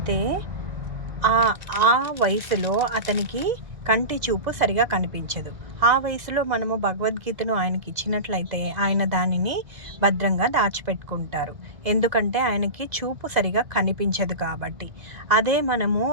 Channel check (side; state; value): left; late; 2.0 ms